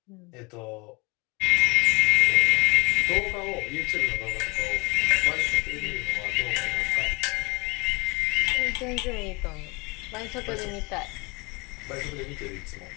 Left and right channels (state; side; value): quieter; right; 27.3 dB